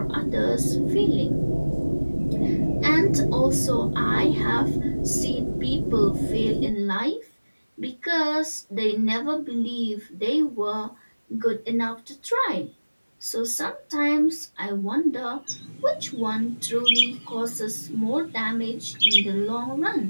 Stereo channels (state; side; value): inverted; both; correlation -1.00